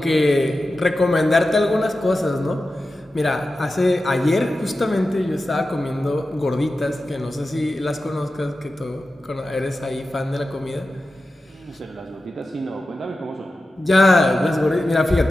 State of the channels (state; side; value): normal; both; correlation 0.93